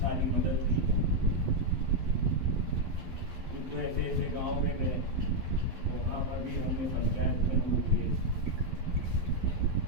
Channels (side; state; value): left; late; 12 ms